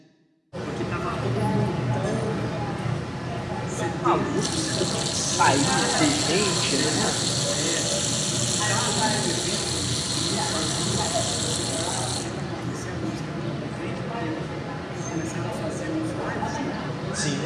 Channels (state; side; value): identical; both; correlation 1.00